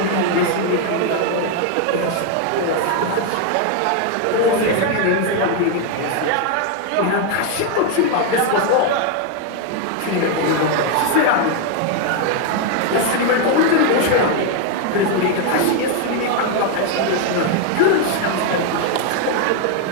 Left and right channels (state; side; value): different; both; correlation 0.01